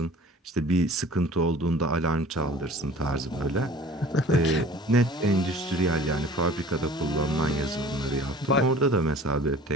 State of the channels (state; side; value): normal; both; correlation 0.47